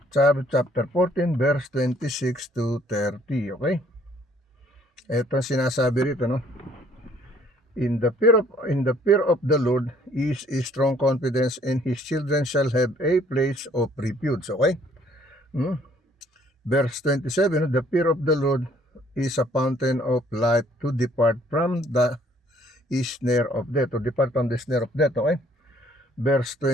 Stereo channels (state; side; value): normal; both; correlation 0.61